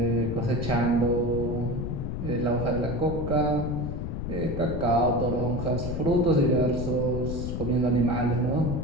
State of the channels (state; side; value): noise; left; rumble, 5 dB below the sound